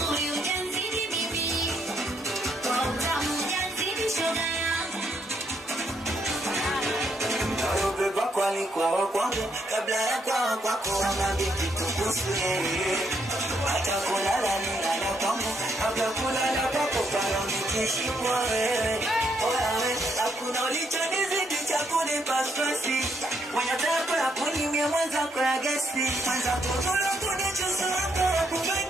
ujazidi bibi, kwa utamu ujazidi shoga yangu. Beba kwani kwa kwangu, kabla ya kwa kwako wamambi kitukusu yeye. Hata kulala nilala kwangu, kabla kulala kwako pala nikishimwa wewe. Oyawe, hakuna ulichonizidi cha kunipa stresi. Mwenye tako ya kunimia mwenzako ya gesi. Mwenzako tula kunichusu wako ya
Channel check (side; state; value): both; normal; correlation 0.75